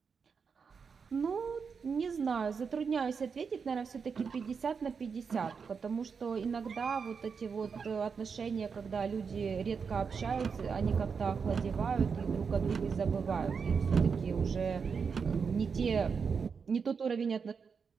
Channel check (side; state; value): left; quieter; 5.8 dB